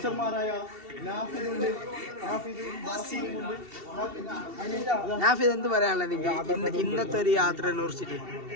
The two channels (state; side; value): late; left; 2.7 ms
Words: നാഫിദ് എന്ത് പറയാനുള്ളത് ഇന്നത്തെ ഒരു യാത്ര കുറിച്ചിട്ട്?